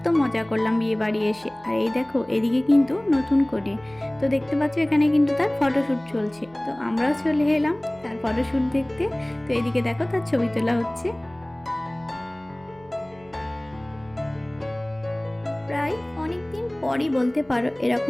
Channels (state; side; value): noise; right; hum, 27 dB below the sound